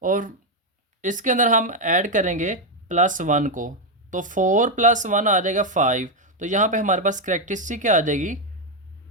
और इसके अंदर हम ऐड करेंगे +1 को। तो 4 + 1 आ जाएगा 5। तो यहाँ पे हमारे पास करेक्टरिस्टिक क्या आ जाएगी,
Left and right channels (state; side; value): normal; both; correlation 0.04